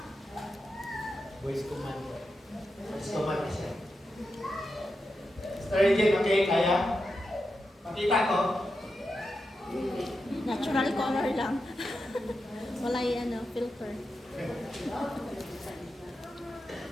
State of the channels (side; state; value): both; normal; correlation 0.88